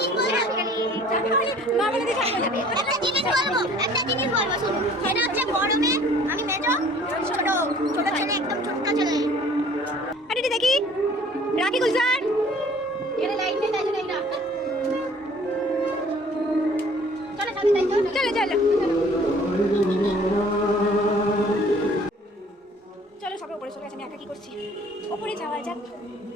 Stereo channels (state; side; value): normal; both; correlation 0.53